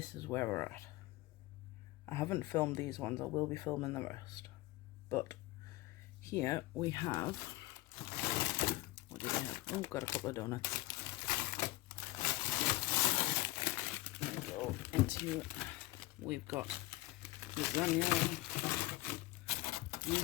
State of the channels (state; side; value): quieter; right; 19.7 dB